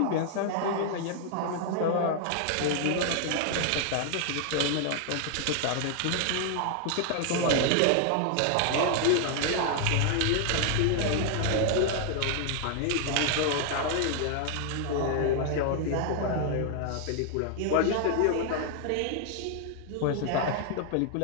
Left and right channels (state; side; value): different; both; correlation 0.00